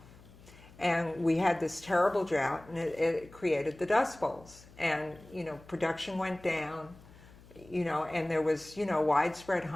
And we had this terrible drought, and it created the Dust Bowls. And, production went down, and there was, widespread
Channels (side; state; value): left; noise; hum, 22 dB below the sound